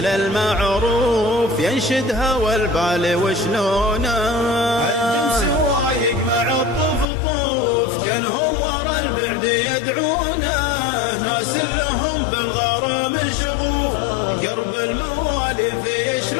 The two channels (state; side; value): drops out; right; at 7.1 s